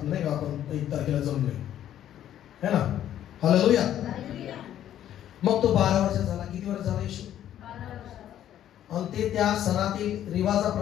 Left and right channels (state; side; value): quieter; right; 11.3 dB